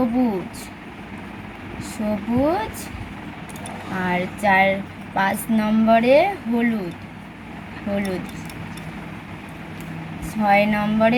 আর 5 নম্বরে হলুদ। 6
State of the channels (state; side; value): identical; both; correlation 1.00